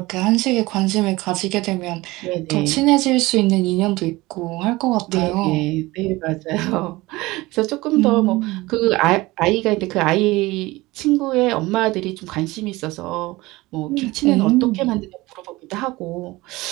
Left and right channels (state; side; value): quieter; left; 20.4 dB